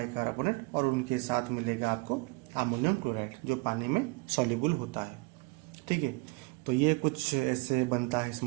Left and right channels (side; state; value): left; quieter; 26.7 dB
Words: और उनके साथ मिलेगा आपको अमोनियम क्लोराइड जो पानी में सॉल्युबल होता है। ठीक है, तो ये कुछ ऐसे बनता है